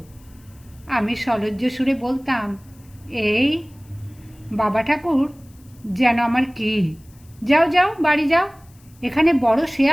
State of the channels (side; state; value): left; noise; hiss, 29 dB below the sound